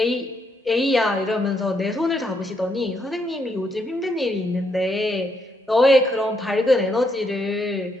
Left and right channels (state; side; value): normal; both; correlation 0.76